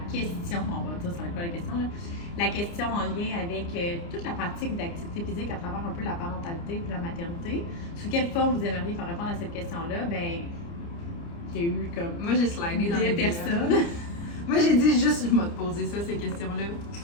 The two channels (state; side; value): late; right; 29 ms